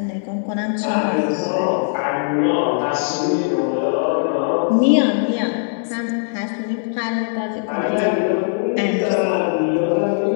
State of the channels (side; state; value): right; silent; 63 dB below the other